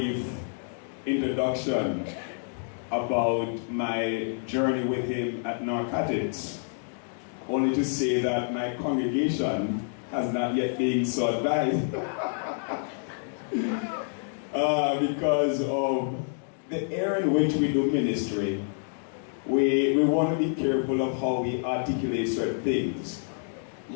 introduction about my journey with him at Narcotics. Only to say that my congregation has not yet been so advised because of the area in which we do ministry. We want to be careful of how we articulate certain things.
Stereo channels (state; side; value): silent; right; digital silence